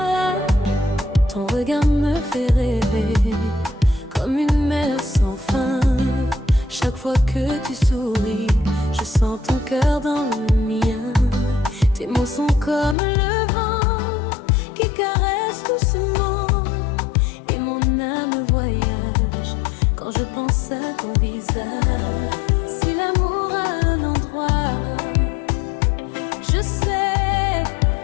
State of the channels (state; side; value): drops out; right; at 13.0 s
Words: Ton regard me fait rêver comme une mer sans fin. Chaque fois que tu souris, je sens ton cœur dans le mien. Tes mots sont comme le vent qui caresse doucement. Et mon âme voyage quand je pense à ton visage. Si l'amour a un endroit, je sais